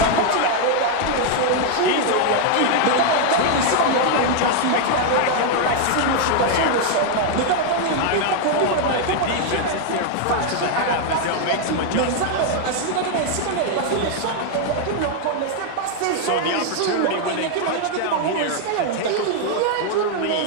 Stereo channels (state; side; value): different; both; correlation 0.00